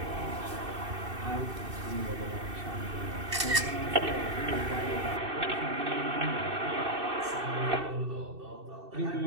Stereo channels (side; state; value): left; late; 2.7 ms